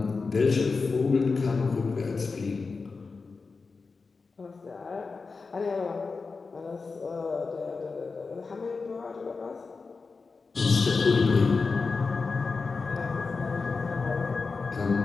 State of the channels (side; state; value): right; quieter; 4.4 dB